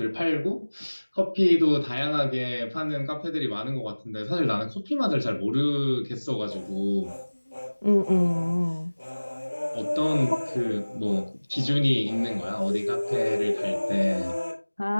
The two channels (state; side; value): inverted; both; correlation -1.00